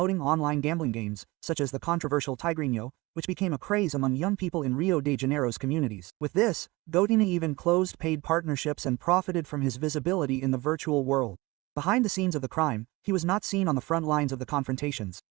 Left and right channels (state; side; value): quieter; left; 22.2 dB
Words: online gambling games, such as the controversial Tigrinho, which became a craze among young people in Rio de Janeiro's communities. With this, Gotinha even closed paid partnerships and profited from his visibility in the virtual world. Behind the scenes of the crime, he was not seen on the front lines of the confrontations.